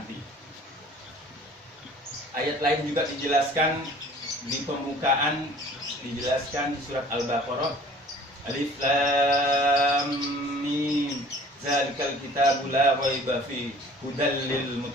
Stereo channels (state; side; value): normal; both; correlation 0.49